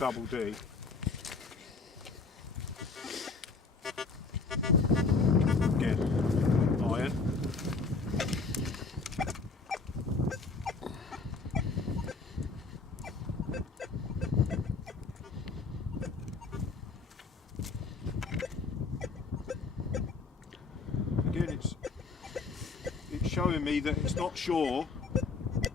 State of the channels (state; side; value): quieter; right; 4.2 dB